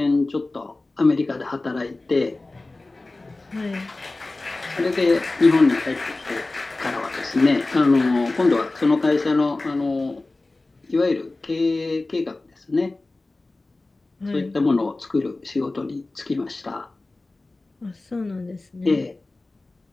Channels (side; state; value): right; quieter; 3.1 dB